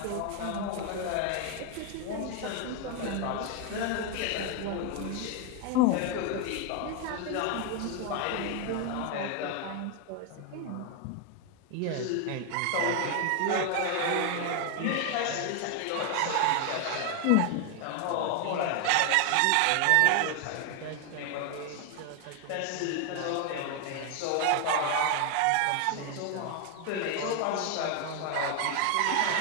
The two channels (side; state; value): both; different; correlation 0.01